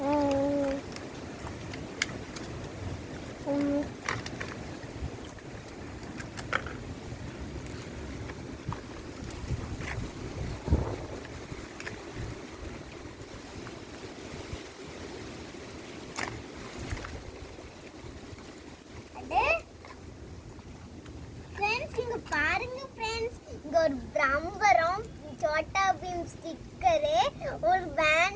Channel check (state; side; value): identical; both; correlation 1.00